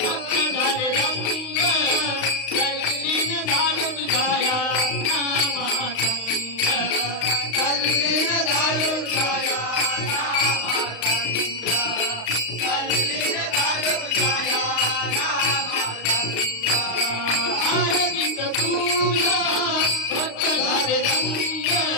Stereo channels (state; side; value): late; right; 35 ms